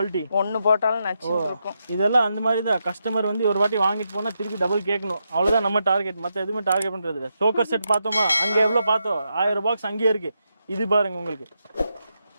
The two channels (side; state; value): both; inverted; correlation -0.84